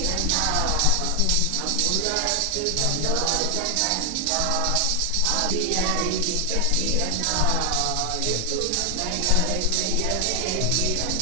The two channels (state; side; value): different; both; correlation 0.00